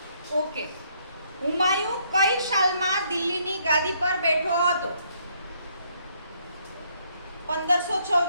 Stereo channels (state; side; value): inverted; both; correlation -0.70